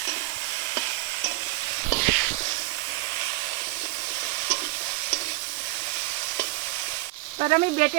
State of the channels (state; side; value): quieter; left; 21.6 dB